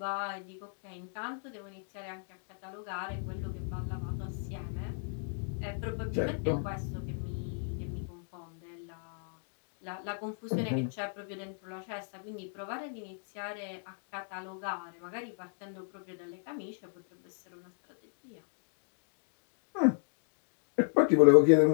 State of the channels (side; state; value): right; silent; 55 dB below the other